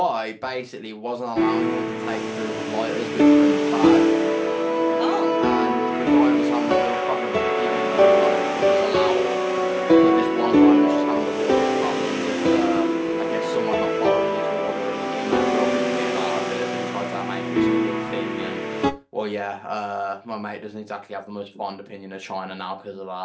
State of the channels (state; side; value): identical; both; correlation 1.00